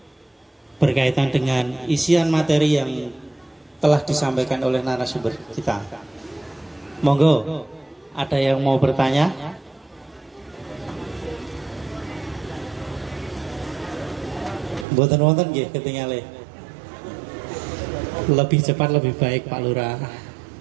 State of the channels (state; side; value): drops out; left; at 14.9 s